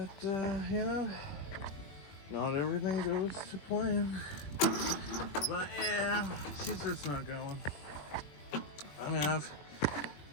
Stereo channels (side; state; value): right; late; 21 ms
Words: you know, not everything goes to plan. But yeah, she's just not going. I mean,